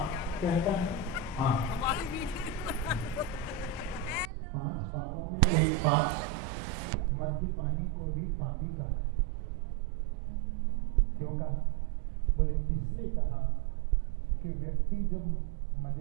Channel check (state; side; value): drops out; left; at 4.3 s